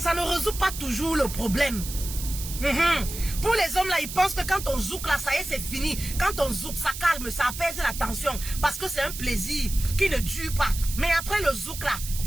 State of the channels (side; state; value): right; noise; hiss, 9 dB below the sound